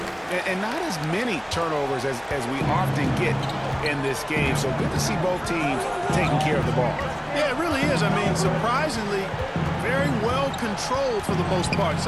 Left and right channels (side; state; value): both; identical; correlation 1.00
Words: And not as many turnovers as we often get in this game. So good to see both teams taking care of the ball. Yeah, it really is. I mean, surprisingly, very well controlled for the most part.